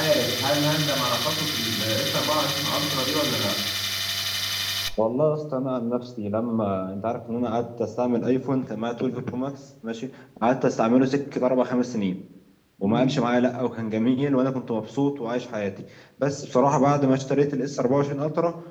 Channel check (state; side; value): identical; both; correlation 1.00